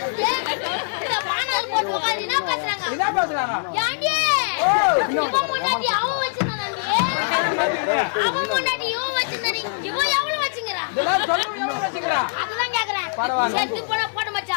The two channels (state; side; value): silent; right; digital silence